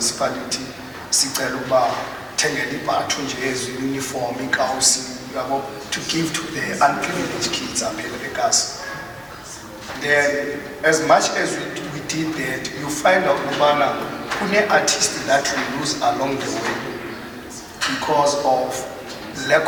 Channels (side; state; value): both; identical; correlation 1.00